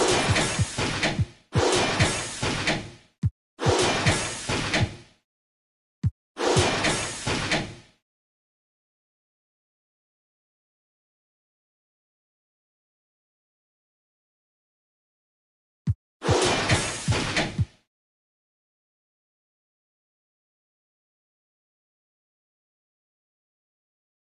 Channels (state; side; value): identical; both; correlation 1.00